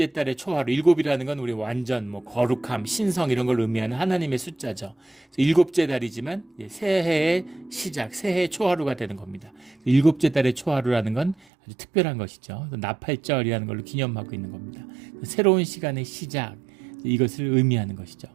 달의 초하루, 일곱이라는 건 우리 완전 거룩함, 신성 이런 걸 의미하는 하나님의 숫자죠. 일곱째 달이지만 새해의 시작, 새해의 초하루가 되는 겁니다. 일곱째 달의 초하루라는 건 아주 특별한 것이죠. 나팔절이라는 걸로 기념하고 있는 겁니다. 새로운 시간의 시작, 이것을 의미하는 것이죠.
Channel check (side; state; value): left; drops out; at 11.4 s